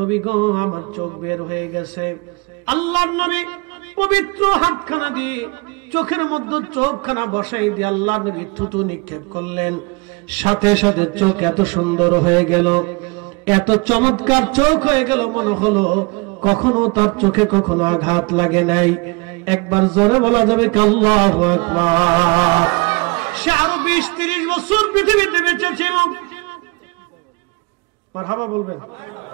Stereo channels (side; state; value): left; quieter; 28.1 dB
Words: গো, আমার চোখ বের হয়ে গেছে। আল্লাহর নবী পবিত্র হাতখানা দিয়ে চোখের মধ্যে চোখখানা বসাই দিয়ে আল্লাহ নবী থুতু নিক্ষেপ করলেন। সাথে সাথে চোখ এত সুন্দর হয়ে গেল, এত চমৎকার চোখ হয়ে গেল, মনে হলো কখনো তার চোখে কখনো আঘাত লাগে নাই। একবার জোরে বলা যাবে কি আল্লাহু আকবার। সে আরো 20-30 বছর পৃথিবীতে বেঁচে ছিল। মারহাবা বলবেন।